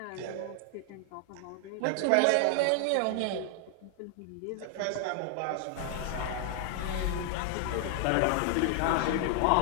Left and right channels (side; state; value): both; different; correlation 0.00